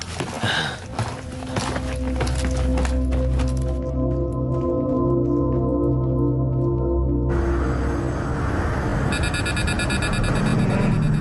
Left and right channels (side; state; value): both; identical; correlation 1.00